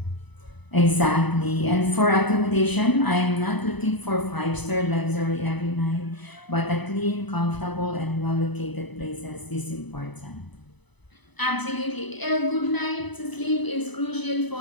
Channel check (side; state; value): right; late; 0.99 ms